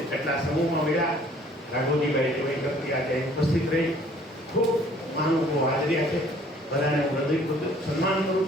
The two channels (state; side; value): normal; both; correlation 0.57